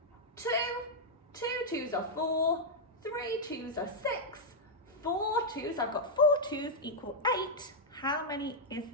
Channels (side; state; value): both; normal; correlation -0.05